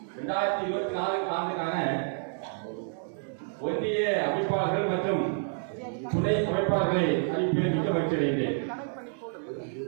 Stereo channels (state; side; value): silent; left; 59 dB below the other